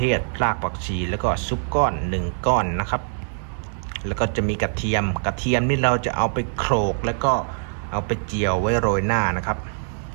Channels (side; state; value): left; silent; digital silence